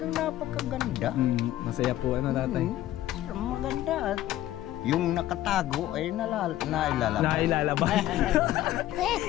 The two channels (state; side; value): quieter; right; 13.9 dB